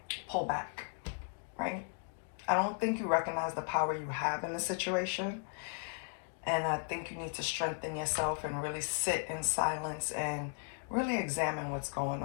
pull back, right? I don't think you recognize the power you have in the situation. And I think you need to strengthen yourself and really sit in silence and really examine what's going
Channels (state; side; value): silent; right; 54 dB below the other